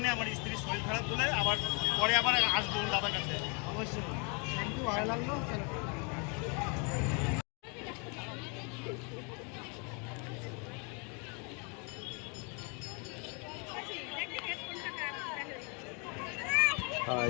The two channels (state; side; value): quieter; right; 34.6 dB